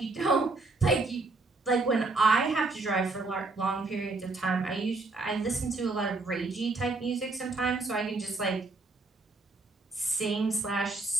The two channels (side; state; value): left; quieter; 3.5 dB